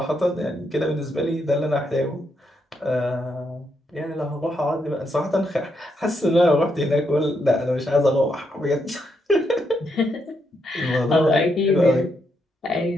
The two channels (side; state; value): both; normal; correlation 0.79